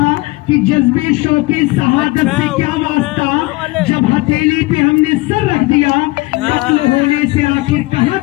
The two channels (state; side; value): quieter; right; 21.9 dB